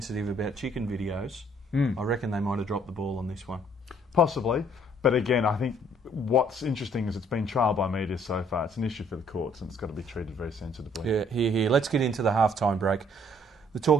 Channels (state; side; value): normal; both; correlation 0.62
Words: about chicken videos. I reckon they might have dropped the ball on this one. Possibly. But again, I think what's interesting is it's been trialled by media so far. It's an issue for the courts and it's got to be treated very sensitively. Yeah, here. Let's get into the halftime break. The